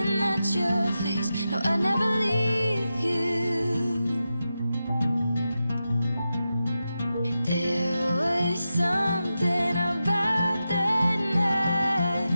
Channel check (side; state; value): both; inverted; correlation -0.91